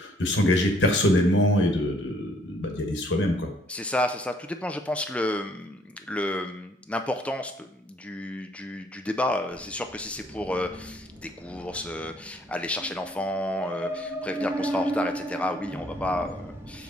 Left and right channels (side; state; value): both; normal; correlation 0.64